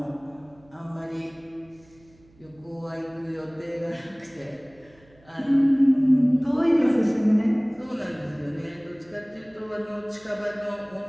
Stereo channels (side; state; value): right; noise; hum, 29 dB below the sound